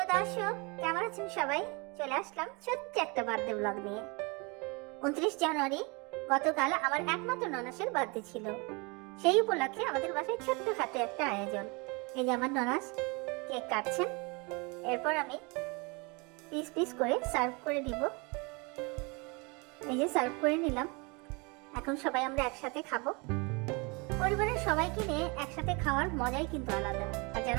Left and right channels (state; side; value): quieter; left; 29.2 dB